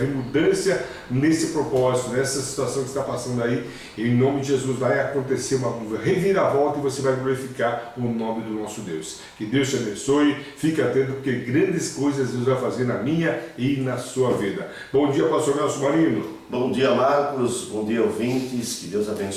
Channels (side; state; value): both; identical; correlation 1.00